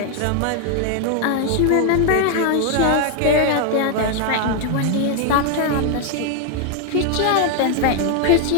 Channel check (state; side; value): different; both; correlation 0.00